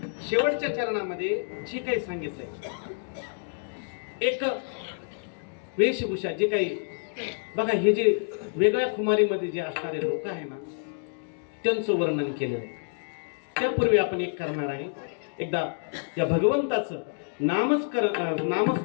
शेवटच्या चरणामध्ये जे काही सांगितलंय, एक वेशभूषा जे काही, बघा हे जे वेगळ्या खुमारीमध्ये जे असणारे लोक आहे ना, त्यांचं वर्णन केलेलं आहे. त्यापूर्वी आपण एक करणार आहे. एकदा या भगवंताचं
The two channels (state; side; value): silent; right; digital silence